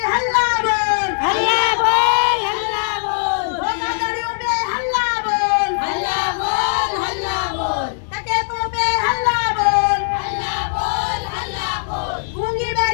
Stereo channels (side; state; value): right; silent; 66 dB below the other